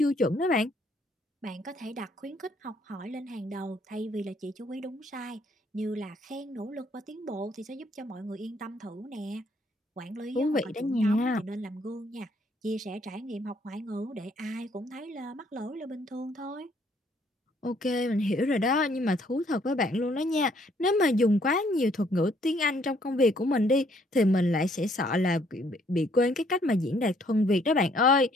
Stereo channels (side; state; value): both; normal; correlation 0.66